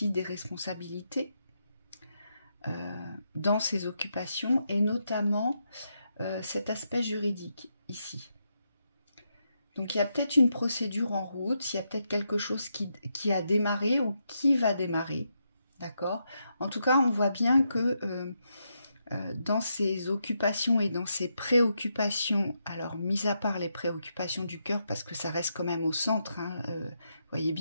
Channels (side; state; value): both; inverted; correlation -0.82